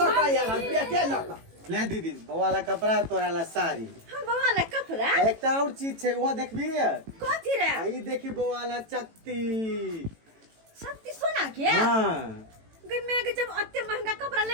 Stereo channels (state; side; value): late; left; 18 ms